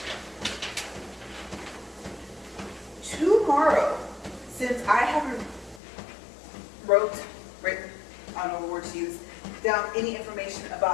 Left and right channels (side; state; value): right; drops out; at 5.8 s